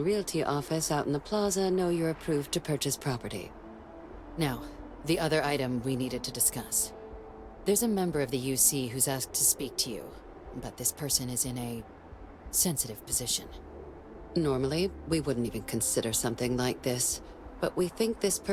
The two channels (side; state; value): both; identical; correlation 1.00